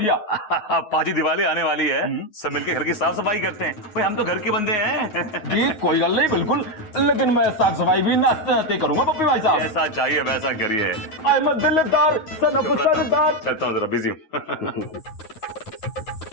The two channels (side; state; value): right; late; 9.4 ms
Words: पाजी दिवाली आने वाली है, सब मिलके घर की साफ सफाई करते हैं। भाई हम तो घर के बंदे हैं। जी कोई गल नहीं, बिल्कुल, लेकिन मैं साफ सफाई भी नाते नाते करूंगा पप्पी भाई साहब। जैसा चाहिए वैसा करिए। आई एम दिलदार सन ऑफ सरदार। चलता हूँ, जरा बिजी हूँ।